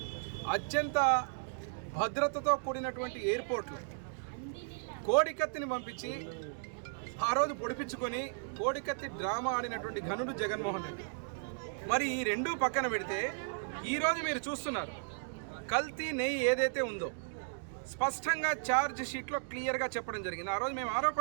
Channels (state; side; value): silent; left; digital silence